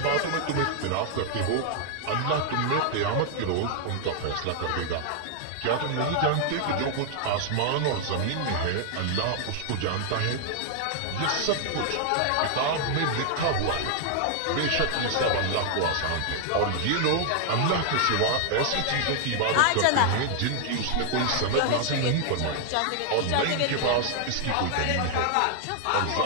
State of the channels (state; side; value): different; both; correlation 0.00